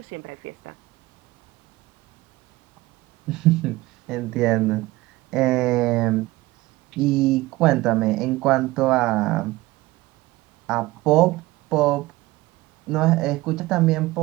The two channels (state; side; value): quieter; left; 19.3 dB